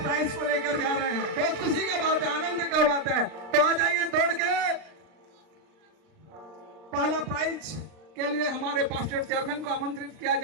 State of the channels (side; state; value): left; late; 39 ms